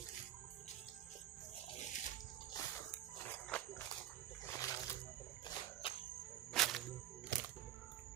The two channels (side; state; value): left; quieter; 11.9 dB